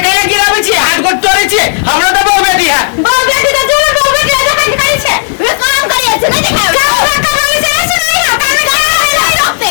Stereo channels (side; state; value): right; silent; 68 dB below the other